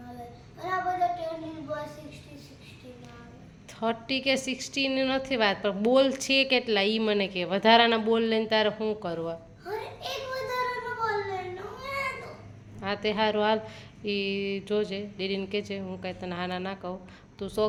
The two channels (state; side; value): identical; both; correlation 1.00